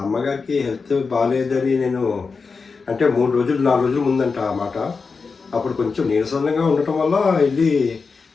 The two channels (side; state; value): right; quieter; 4.8 dB